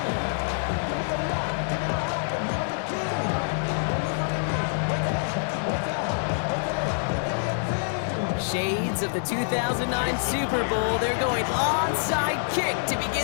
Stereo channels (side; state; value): right; silent; digital silence